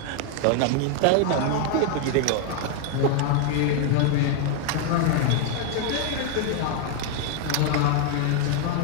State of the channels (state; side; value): different; both; correlation 0.00